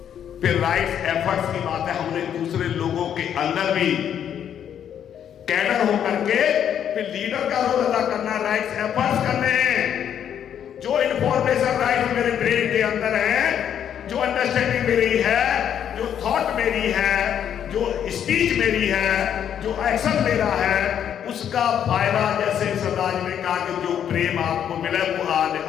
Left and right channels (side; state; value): right; quieter; 9.2 dB